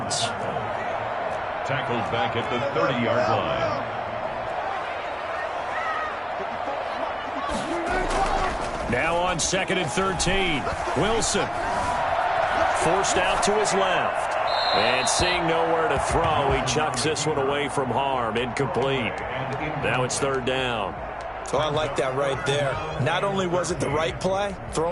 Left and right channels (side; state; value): both; identical; correlation 1.00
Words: Tackled back at the 30-yard line. Now on 2nd and 13. Wilson. Forced out to his left. And seeing nowhere to throw, he chucks this one away from harm. Incomplete. Now it's 3rd down. So I like that right there. Not only was it the right play,